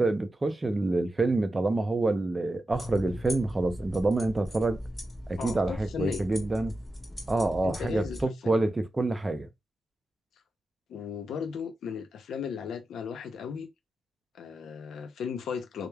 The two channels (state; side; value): normal; both; correlation 0.90